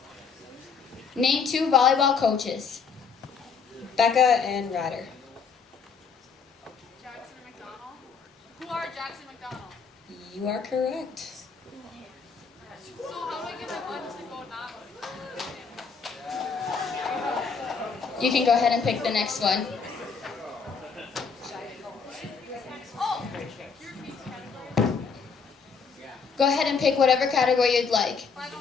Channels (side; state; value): right; quieter; 5.6 dB